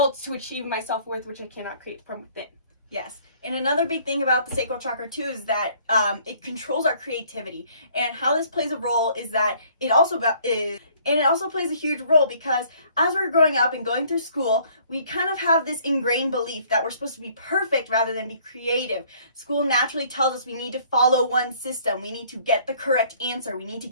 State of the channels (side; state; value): both; inverted; correlation -0.59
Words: to achieve my self-worth, which I cannot create from within. Yes, and another big thing about the sacral chakra too is that it controls our creativity. And how this plays a role is that it also plays a huge role, because as we're growing up and going through school, we kind of have this ingrained belief that we're supposed to be perfect rather than be creative. School naturally tells us we need to follow one system. We need to get the correct answer. We need to